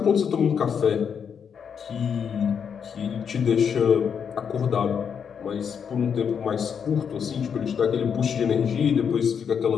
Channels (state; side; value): quieter; right; 7.2 dB